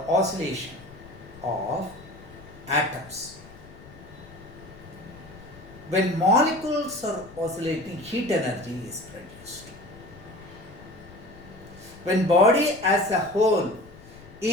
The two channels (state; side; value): noise; left; rumble, 20 dB below the sound